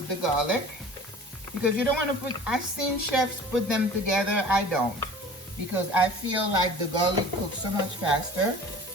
the garlic. Because you don't want to put, I've seen chefs put them together. I don't. Because I feel like the garlic cooks so much faster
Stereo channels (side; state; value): both; normal; correlation 0.43